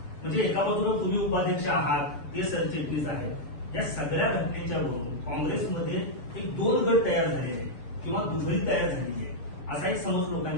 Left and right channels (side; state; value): right; late; 6.9 ms